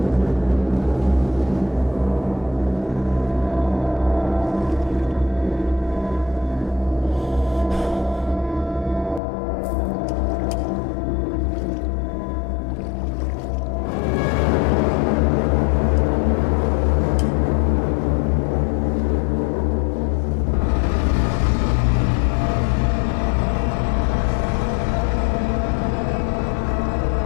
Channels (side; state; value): right; drops out; at 9.2 s